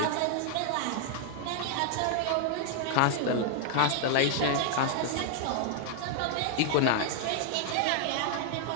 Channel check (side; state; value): both; different; correlation 0.00